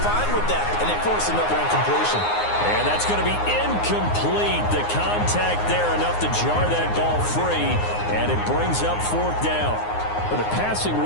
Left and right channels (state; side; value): late; right; 9.6 ms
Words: fine with that, and they force another incompletion. And that's going to be incomplete. The contact there enough to jar that ball free, and it brings up 4th down. But the passing